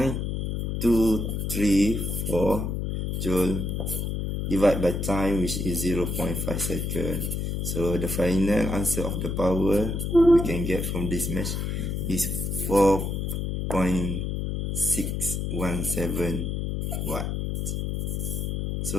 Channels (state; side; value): noise; left; hum, 1 dB below the sound